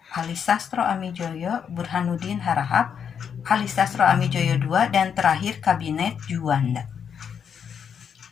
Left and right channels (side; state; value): right; quieter; 7.4 dB